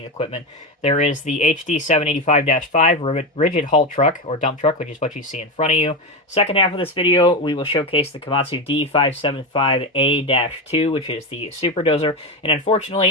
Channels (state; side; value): normal; both; correlation 0.16